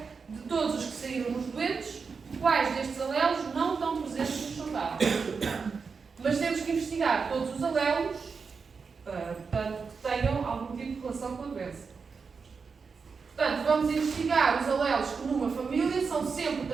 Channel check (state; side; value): quieter; left; 5.2 dB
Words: De todos os que saíram nos doentes, quais destes alelos não estão presentes nos saudáveis. Mas temos que investigar todos os alelos, portanto, que tenham algum tipo de relação com a doença. Portanto, vamos investigar os alelos que numa família são sempre